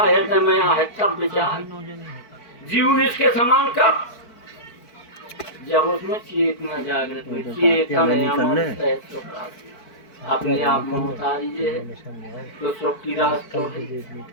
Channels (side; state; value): right; late; 4.5 ms